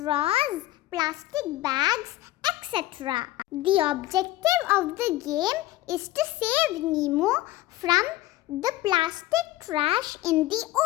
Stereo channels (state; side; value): quieter; right; 16.2 dB